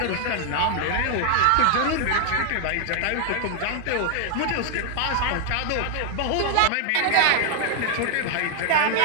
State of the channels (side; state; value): both; different; correlation 0.00